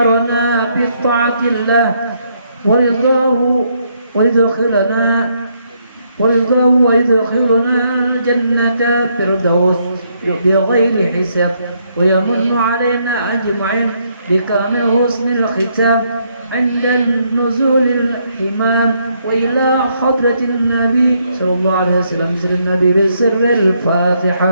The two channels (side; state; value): both; inverted; correlation -0.74